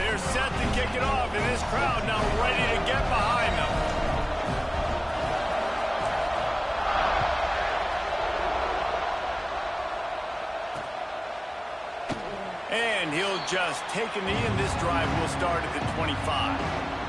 set to kick it off, and this crowd now ready to get behind them. And he'll just take a knee, and this drive will start at the 25.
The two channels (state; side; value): identical; both; correlation 1.00